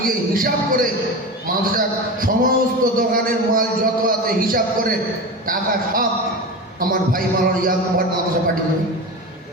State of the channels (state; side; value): normal; both; correlation 0.26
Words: গিয়ে হিসাব করে মাদ্রাসার সমস্ত দোকানের মাল যত আছে হিসাব করে টাকা সব আমার ভাই মালার ইয়াকুবার মাদ্রাসা পাঠিয়ে দেবে।